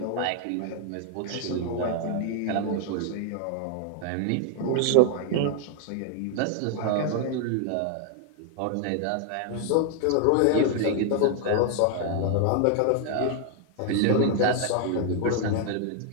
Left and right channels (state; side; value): different; both; correlation 0.00